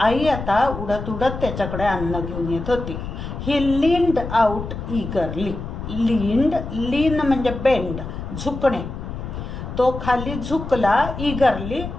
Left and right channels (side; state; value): left; noise; rumble, 7 dB below the sound